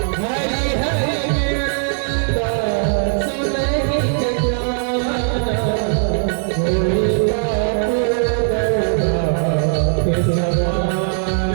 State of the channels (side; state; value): left; silent; digital silence